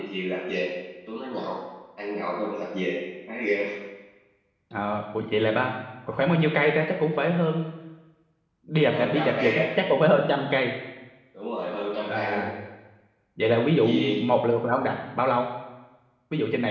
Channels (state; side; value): identical; both; correlation 1.00